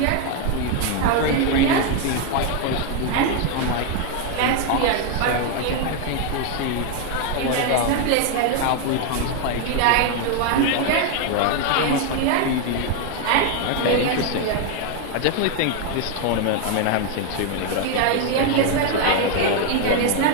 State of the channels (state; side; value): different; both; correlation 0.01